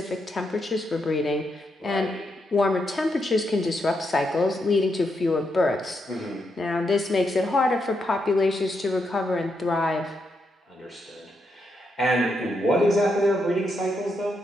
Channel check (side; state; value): both; normal; correlation 0.81